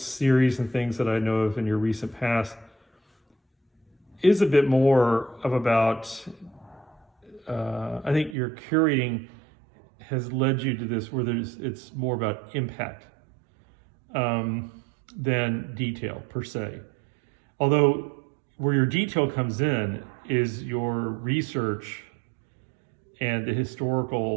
and things that I know of in your recent past, is a bit more of about, I think your curating has led you to this where it's more about impact than detail per se. Although where your detail comes in is your research and the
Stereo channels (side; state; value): left; drops out; at 8.3 s